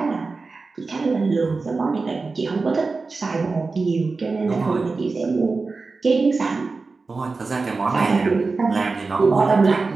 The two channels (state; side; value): quieter; left; 4.0 dB